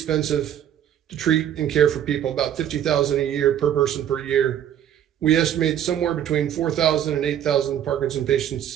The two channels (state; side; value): quieter; left; 10.1 dB